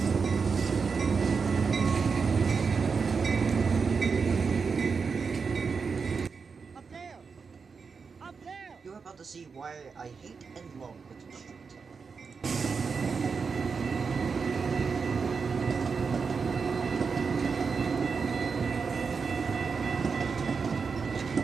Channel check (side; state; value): left; quieter; 5.3 dB